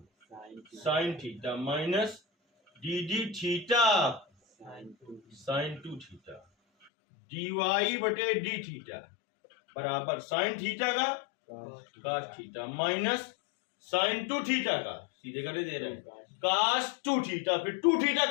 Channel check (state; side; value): drops out; right; at 6.9 s